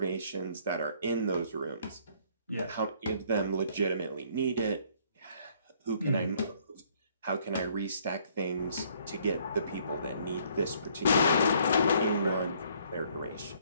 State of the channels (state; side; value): inverted; both; correlation -0.63